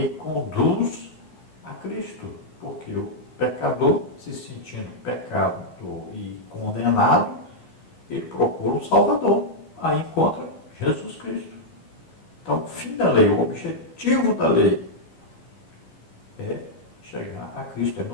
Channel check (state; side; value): late; right; 13 ms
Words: conduz a Cristo, porque o pecador, se sentindo pecador e condenado, ele procura um salvador, aí encontra Jesus Cristo. Então, o fim da lei, o objetivo da lei é chegar a Cristo, é